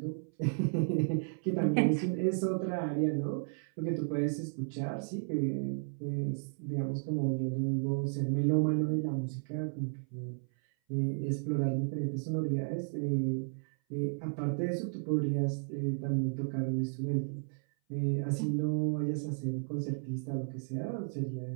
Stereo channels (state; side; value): silent; left; 55 dB below the other